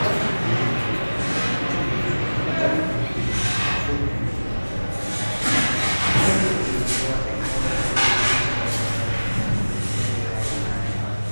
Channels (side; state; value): both; inverted; correlation -1.00